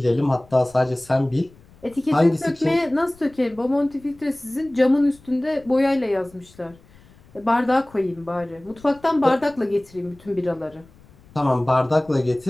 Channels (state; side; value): noise; left; rumble, 26 dB below the sound